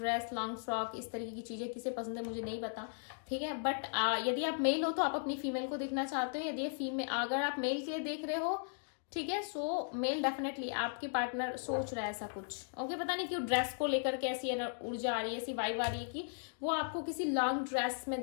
लॉन्ग फ्रॉक, इस तरीके की चीजें किसे पसंद है मुझे नहीं पता, ठीक है, बट यदि आप मेल हो तो आप अपनी फीमेल को देखना चाहते हो, यदि फीमेल, अगर आप मेल के लिए देख रहे हो, ठीक है, सो मेल डेफिनेटली आपके पार्टनर सोच रहा है ऐसा कुछ, ओके, पता नहीं क्यों ड्रेस को लेकर के ऐसी ऊर्जा आ रही है, ऐसी वाइब आ रही है कि वो आपको किसी लॉन्ग ड्रेस में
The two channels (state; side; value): silent; right; digital silence